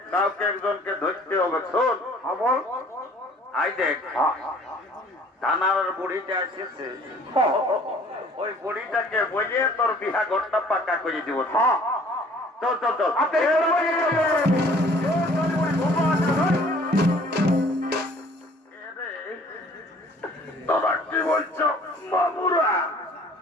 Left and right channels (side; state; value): both; normal; correlation 0.54